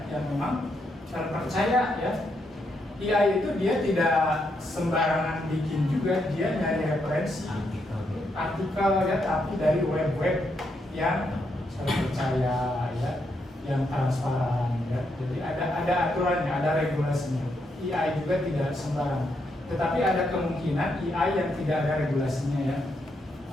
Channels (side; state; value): both; normal; correlation 0.79